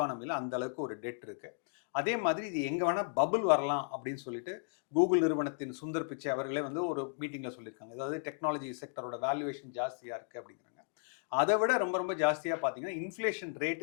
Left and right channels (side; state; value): right; silent; digital silence